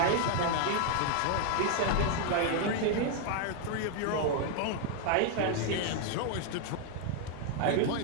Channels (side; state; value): both; different; correlation 0.00